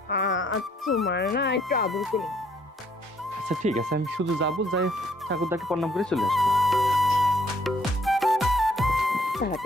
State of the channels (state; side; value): normal; both; correlation 0.65